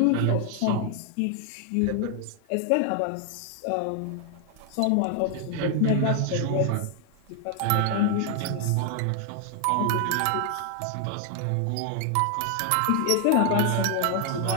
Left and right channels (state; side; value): different; both; correlation 0.00